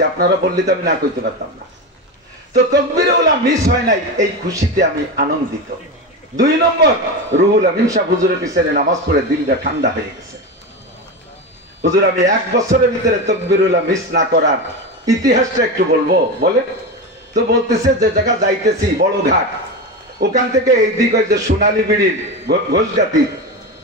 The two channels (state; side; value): normal; both; correlation 0.20